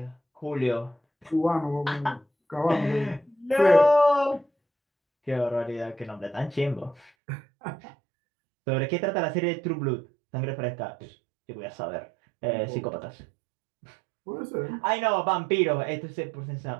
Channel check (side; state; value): left; drops out; at 7.1 s